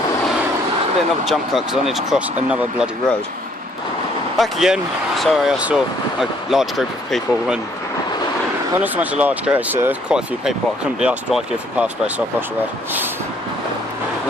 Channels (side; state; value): both; normal; correlation 0.64